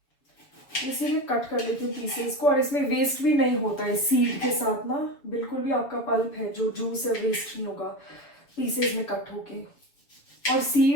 इसीलिए कट कर लेती हूँ पीसेस को, और इसमें वेस्ट भी नहीं होता है सीड के साथ ना, बिल्कुल भी आपका पल्प है जो जूस है वेस्ट नहीं होगा पीसेस में कट होके। और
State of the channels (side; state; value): right; late; 7.0 ms